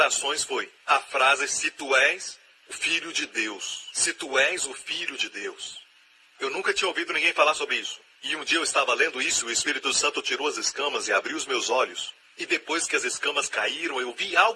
foi a frase, se tu és o Filho de Deus. Se tu és o Filho de Deus. Eu nunca tinha ouvido ninguém falar sobre isso. E um dia eu estava lendo isso, o Espírito Santo tirou as escamas e abriu os meus olhos. E depois que as escamas caíram, eu vi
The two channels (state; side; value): identical; both; correlation 1.00